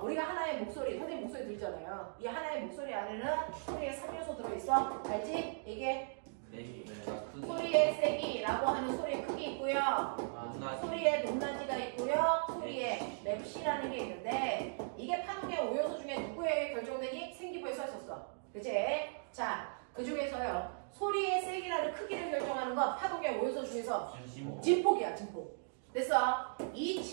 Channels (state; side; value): silent; left; digital silence